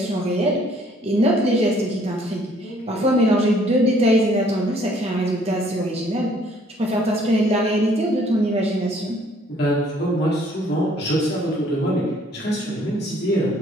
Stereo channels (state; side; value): normal; both; correlation 0.61